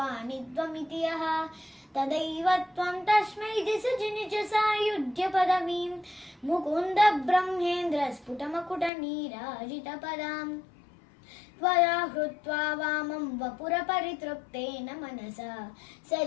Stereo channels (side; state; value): right; drops out; at 8.9 s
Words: त्वमिति यः तदैव त्वं तस्मै दिशजि निज सायुज्यपदवीं मुकुन्द ब्रह्मेन्द्र स्फुटमकुटनीराजितपदाम् त्वया हृत्वा वामं वपुरपरितृप्तेन मनसा